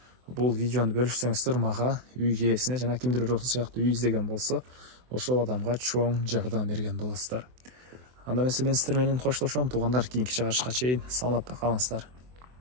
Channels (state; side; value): late; left; 24 ms